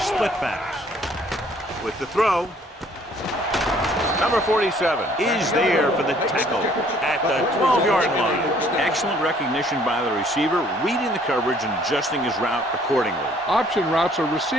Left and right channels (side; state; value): both; normal; correlation 0.60